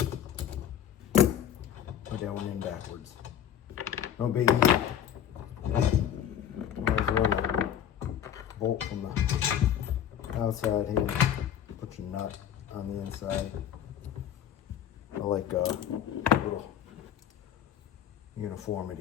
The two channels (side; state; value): right; quieter; 9.8 dB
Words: Put that one in backwards. No biggie. Might as well bolt from the outside here. Put your nut on the inside. I like a little